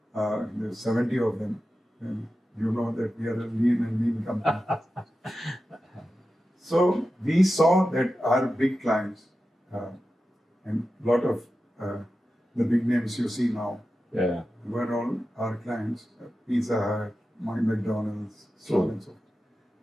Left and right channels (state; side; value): normal; both; correlation 0.92